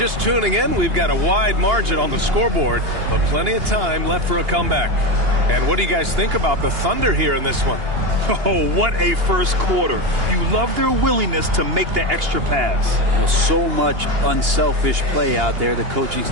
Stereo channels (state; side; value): late; left; 2.8 ms